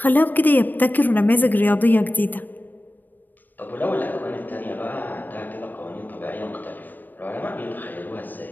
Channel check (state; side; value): late; right; 0.090 ms